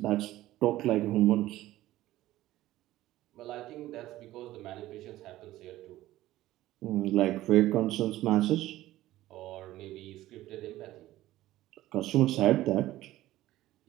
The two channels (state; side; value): quieter; left; 15.6 dB